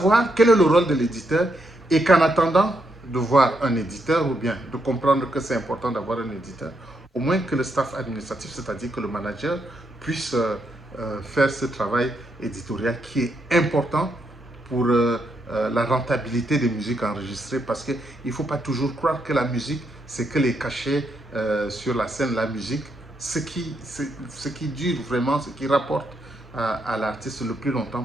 quel est le rôle de l'éditeur et qu'en attendant de voir un éditeur ou bien de comprendre que c'est important d'avoir un éditeur, au moins que le staff administratif, c'est-à-dire que le manager, puisse faire ce travail éditorial qui est important pour la rentabilité des musiques enregistrées, parce qu'il ne faut pas toujours croire que la musique, c'est que les cachets sur la scène. La musique, ce qui dure vraiment, ce qui rapporte à l'artiste le plus longtemps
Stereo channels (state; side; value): normal; both; correlation 0.79